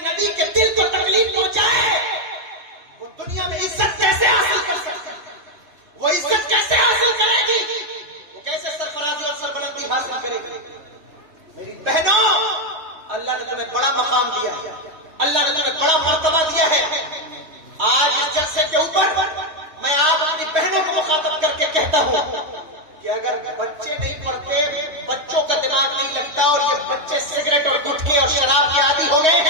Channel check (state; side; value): late; left; 3.2 ms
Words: کے دل کو تکلیف پہنچائے وہ دنیا میں عزت کیسے حاصل کر سکتے, وہ عزت کیسے حاصل کرے گی, وہ کیسے سرفرازی اور سربلندی حاصل کرے گی. میری بہنوں, اللہ نے تمہیں بڑا مقام دیا ہے, اللہ نے تمہیں بڑا مرتبہ دیا ہے. آج اس جلسے کے اوپر میں آپ اپنی بہنوں کو مخاطب کر کے کہتا ہوں کہ اگر بچے نہیں پڑھتے, بچوں کا دماغ نہیں لگتا اور یہ بچے سگریٹ اور گٹکے اور شراب کے عادی ہو گئے